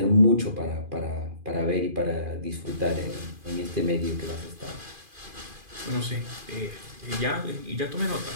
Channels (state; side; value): late; left; 2.4 ms